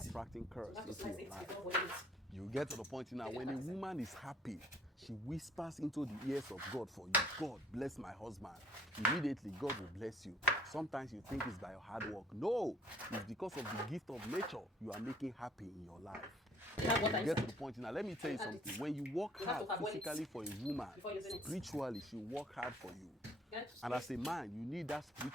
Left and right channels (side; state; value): both; normal; correlation 0.57